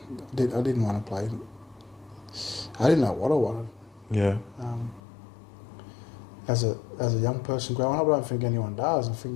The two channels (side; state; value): right; drops out; at 5.0 s